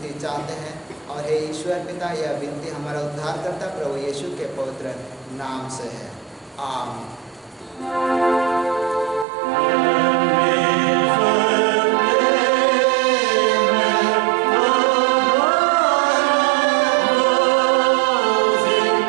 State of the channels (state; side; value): drops out; left; at 9.2 s